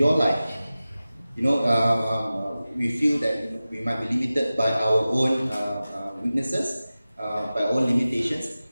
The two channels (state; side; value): inverted; both; correlation -0.96